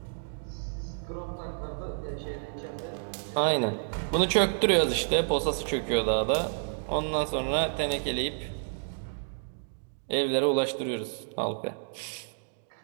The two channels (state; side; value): silent; left; digital silence